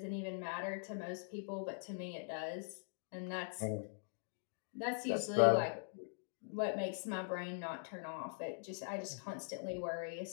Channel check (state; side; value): silent; right; digital silence